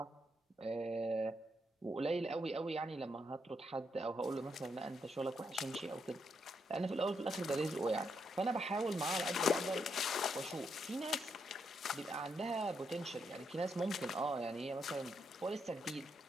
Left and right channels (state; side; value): normal; both; correlation 0.79